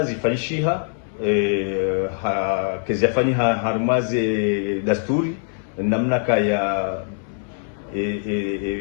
zifanyishiha kezafani harmaze dasturi namna kaya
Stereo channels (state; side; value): silent; right; digital silence